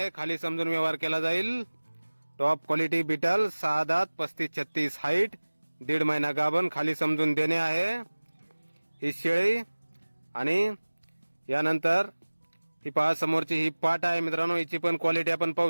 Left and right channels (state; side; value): inverted; both; correlation -1.00